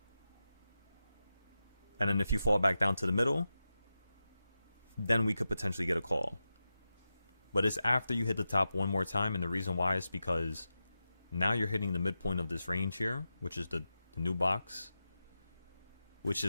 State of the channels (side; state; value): both; inverted; correlation -0.92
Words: And then if you fall back down to the middle, then we could potentially get a call. But it's after you hit the top one more time, and the reason why is because now you're hitting the midpoint of this range here, which is the new box, which